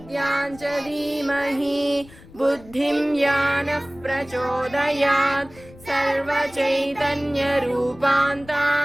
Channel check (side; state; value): left; noise; rumble, 22 dB below the sound